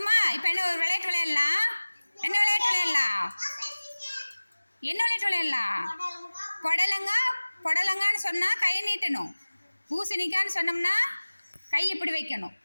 இப்போ என்ன ஒரு விளையாட்டு விளையாடலாம். என்ன விளையாட்டு விளையாடலாம்? என்ன விளையாட்டு விளையாடலாம்? புடலங்கான்னு சொன்னால் கை நீட்டணும். பூசணிக்கான்னு சொன்னோம்னா கை இப்படி வைக்கணும்.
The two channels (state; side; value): inverted; both; correlation -1.00